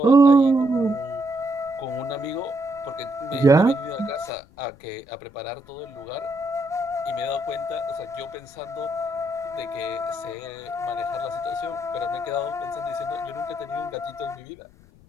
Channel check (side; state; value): left; noise; rumble, 25 dB below the sound